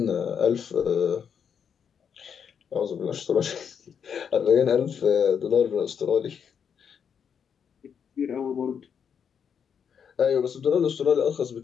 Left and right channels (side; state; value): right; quieter; 7.4 dB